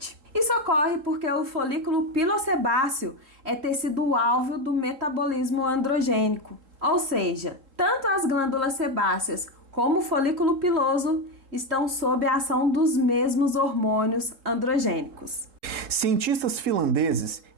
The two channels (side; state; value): left; late; 3.7 ms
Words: Isso ocorre porque o folículo pilosebáceo é tecido-alvo do metabolismo androgênico, ou seja, tanto as glândulas sebáceas como o folículo piloso estão sob a ação dos mesmos hormônios androgênicos. Cientistas finlandeses